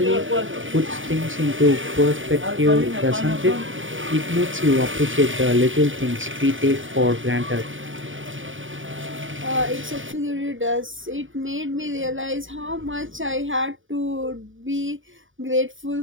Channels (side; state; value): left; late; 0.57 ms